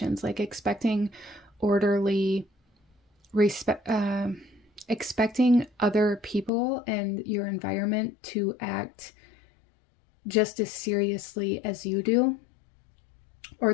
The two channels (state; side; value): drops out; right; at 6.5 s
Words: like expecting orderly expecting other people and your environment to act just as seriously as you do,